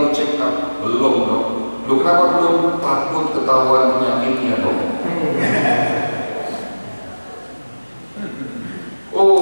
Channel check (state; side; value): inverted; both; correlation -1.00